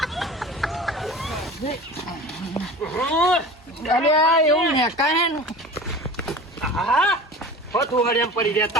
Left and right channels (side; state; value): both; normal; correlation 0.37